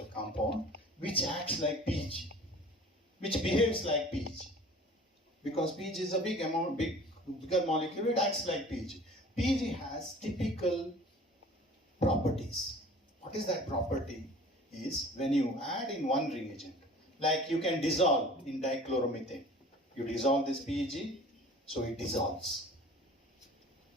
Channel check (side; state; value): both; normal; correlation 0.45